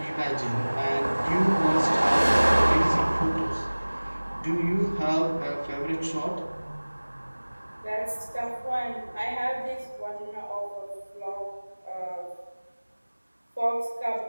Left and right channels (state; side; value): inverted; both; correlation -1.00